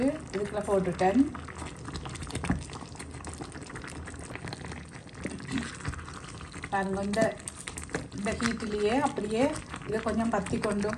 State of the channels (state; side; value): identical; both; correlation 1.00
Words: இதுக்குள்ள போட்டுட்டேன். பாருங்க இந்த ஹீட்டிலேயே அப்படியே இதை கொஞ்சம் பற்றி கொண்டும்